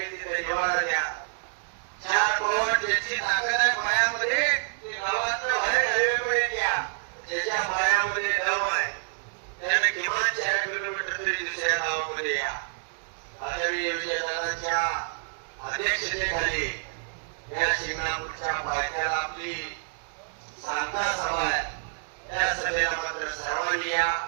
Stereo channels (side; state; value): left; silent; 60 dB below the other